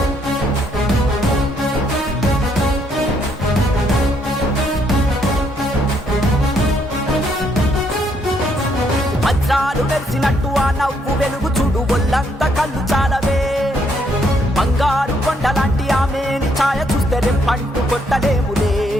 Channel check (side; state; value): both; normal; correlation 0.71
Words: వజ్రాలు వెలిసినట్టు ఆ నవ్వు వెలుగు చూడు, ఒళ్ళంత కళ్ళు చాలవే. బంగారు కొండలాంటి ఆమెని ఛాయ చూస్తే రెప్పంటూ కొట్టలేములే.